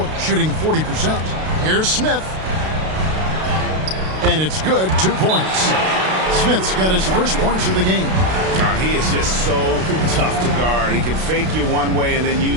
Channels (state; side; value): late; left; 32 ms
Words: shooting 40%. Here's Smith. And it's good, 2 points. Smith's got his first points of the game. He is just so tough to guard. He can fake you one way and then